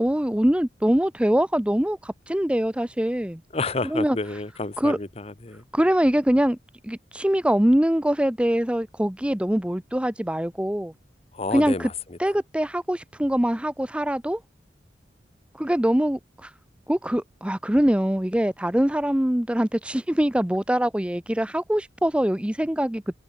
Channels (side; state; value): both; normal; correlation 0.95